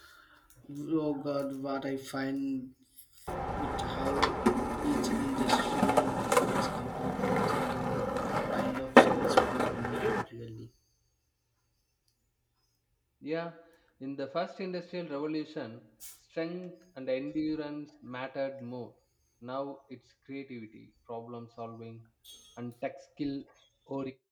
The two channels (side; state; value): both; identical; correlation 1.00